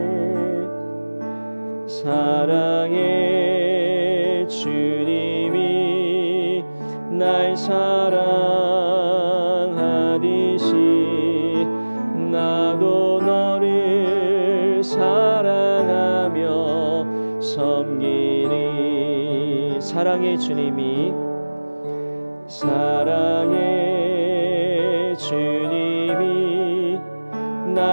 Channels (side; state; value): both; inverted; correlation -1.00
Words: 사랑의 주님이 날 사랑하듯이 나도 너를 사랑하며 섬기리. 사랑의 주님이